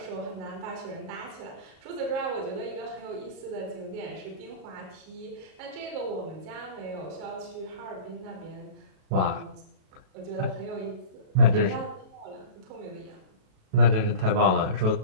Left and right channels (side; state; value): left; late; 38 ms